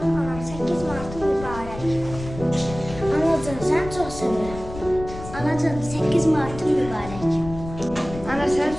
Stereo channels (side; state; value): left; noise; rumble, 12 dB below the sound